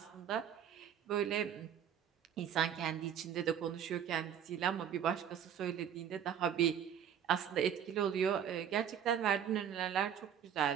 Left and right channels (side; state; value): left; quieter; 8.9 dB